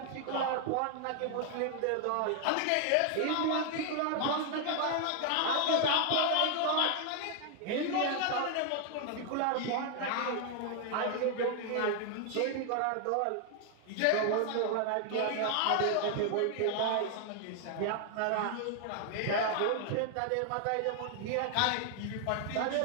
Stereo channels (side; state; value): both; different; correlation 0.00